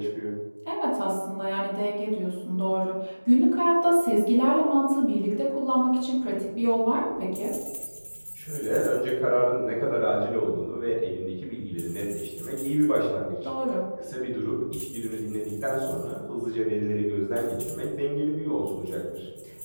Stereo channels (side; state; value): both; inverted; correlation -1.00